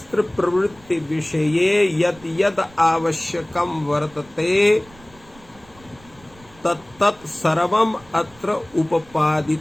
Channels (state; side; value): noise; right; rumble, 26 dB below the sound